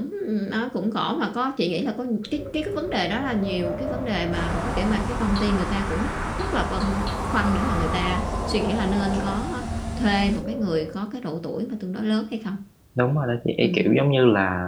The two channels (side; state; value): both; identical; correlation 1.00